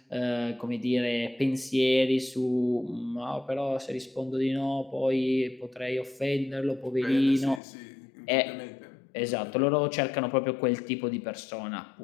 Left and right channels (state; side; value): drops out; right; at 7.6 s